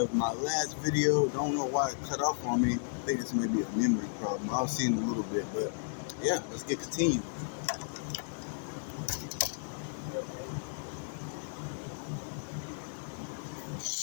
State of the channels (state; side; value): silent; right; digital silence